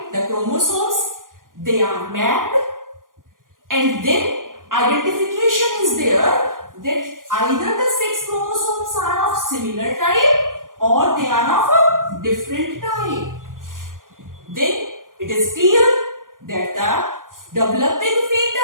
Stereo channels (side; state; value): left; late; 0.90 ms